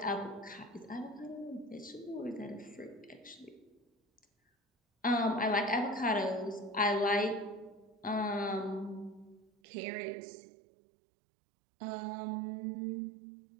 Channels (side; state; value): left; drops out; at 9.5 s